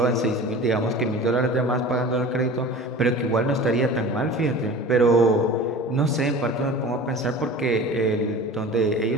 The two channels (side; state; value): both; normal; correlation 0.38